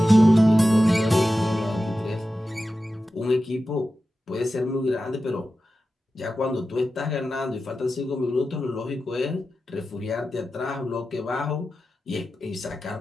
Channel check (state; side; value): normal; both; correlation 0.93